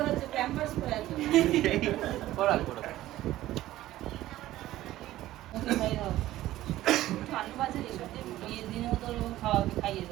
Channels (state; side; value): quieter; left; 15.1 dB